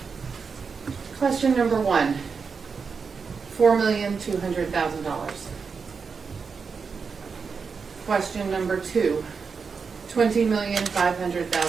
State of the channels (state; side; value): quieter; left; 5.4 dB